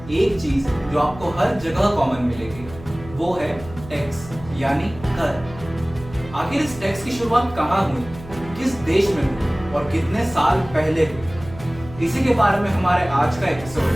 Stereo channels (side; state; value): right; noise; hum, 16 dB below the sound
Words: एक चीज जो आपको हर जगह कॉमन मिलेगी वो है टैक्स यानी कर। आखिर इस टैक्स की शुरुआत कहाँ हुई, किस देश में हुई और कितने साल पहले हुई, इसी के बारे में हमारे आज का एपिसोड